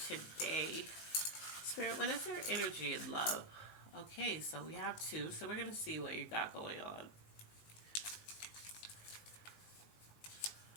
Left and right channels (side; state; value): right; late; 18 ms